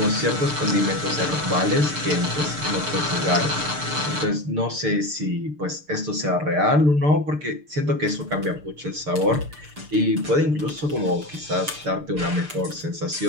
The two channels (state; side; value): late; left; 6.7 ms